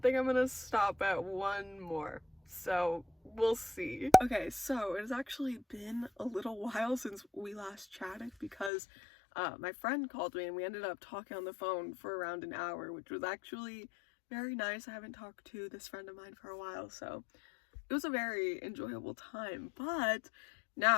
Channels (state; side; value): drops out; right; at 8.7 s